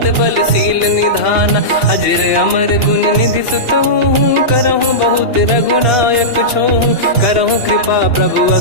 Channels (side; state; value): right; late; 2.9 ms